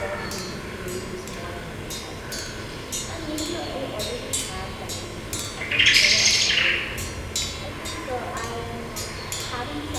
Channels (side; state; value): both; identical; correlation 1.00